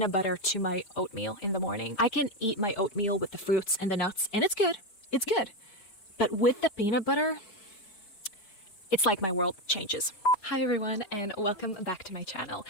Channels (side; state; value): right; late; 4.9 ms